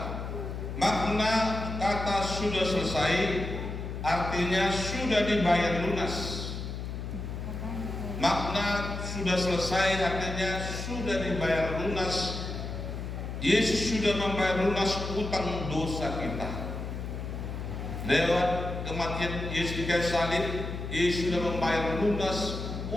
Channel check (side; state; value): left; noise; hum, 6 dB below the sound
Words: makna kata sudah selesai artinya sudah dibayar lunas. Makna sudah selesai artinya sudah dibayar lunas. Yesus sudah membayar lunas utang dosa kita. Lewat kematian Yesus di kayu salib, Yesus sudah membayar lunas